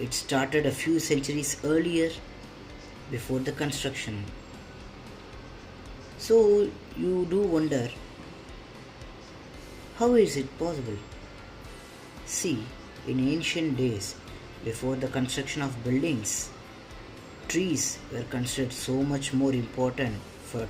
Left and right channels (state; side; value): identical; both; correlation 1.00